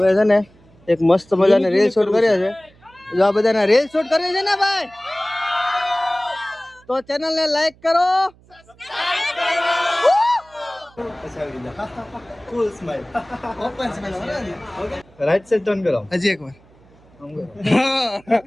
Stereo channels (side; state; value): right; noise; hum, 28 dB below the sound